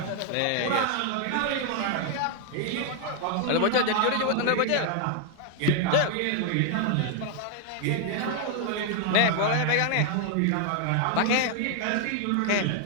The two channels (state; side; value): different; both; correlation 0.00